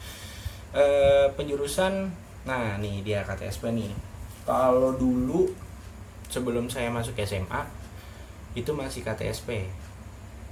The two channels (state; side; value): identical; both; correlation 1.00